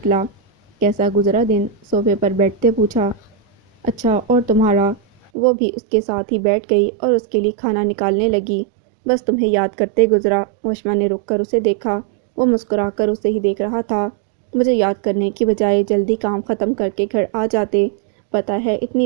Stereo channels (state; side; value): drops out; left; at 5.3 s